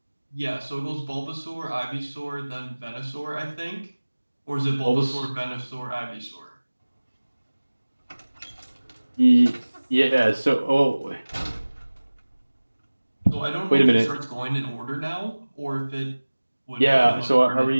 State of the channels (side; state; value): both; inverted; correlation -1.00